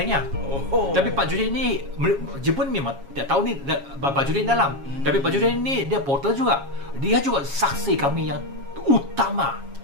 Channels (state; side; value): late; left; 7.3 ms